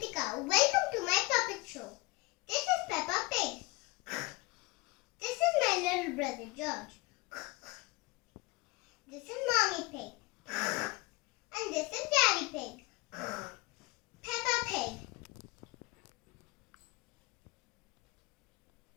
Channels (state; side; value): quieter; right; 23.7 dB